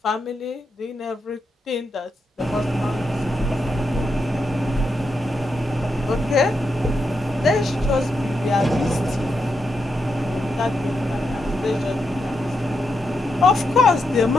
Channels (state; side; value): normal; both; correlation 0.84